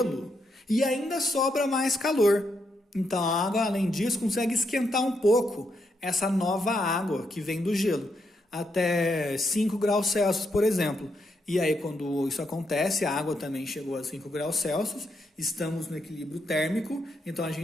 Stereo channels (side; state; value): both; normal; correlation 0.80